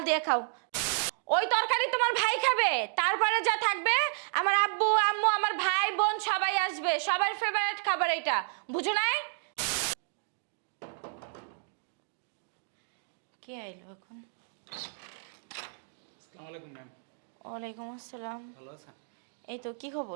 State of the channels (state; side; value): silent; left; digital silence